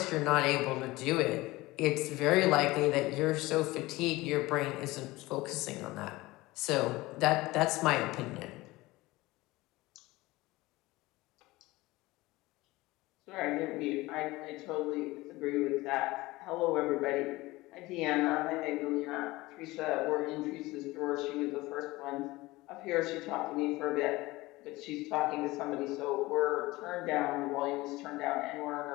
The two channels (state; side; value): quieter; right; 20.1 dB